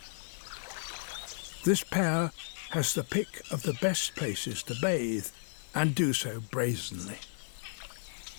This pair has the pick of the best places to bathe and do so brazenly.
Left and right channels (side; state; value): right; silent; digital silence